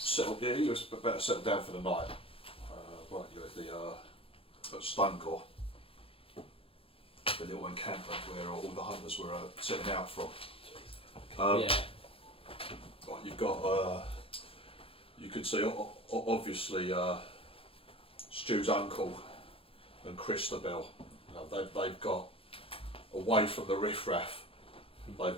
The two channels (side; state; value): right; late; 0.27 ms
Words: settle. Yeah, you were about to settle down for the night. Right, you were at at Stonegore, the little encampment where all the hunters were setting out from. Yeah. Right, you've got. You can see obviously Stu's uncle and Christabel. They've got away from the riffraff. They've